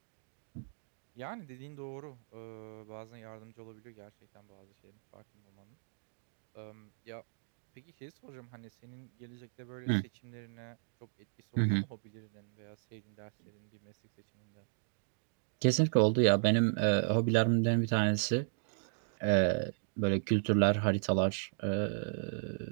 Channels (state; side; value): silent; left; digital silence